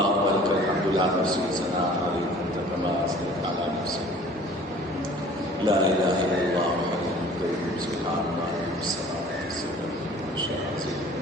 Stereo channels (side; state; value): both; normal; correlation 0.49